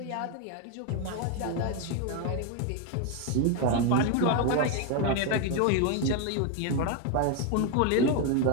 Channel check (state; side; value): different; both; correlation 0.01